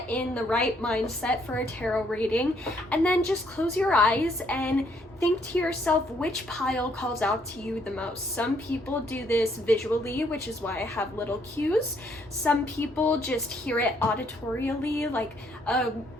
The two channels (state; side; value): normal; both; correlation 0.69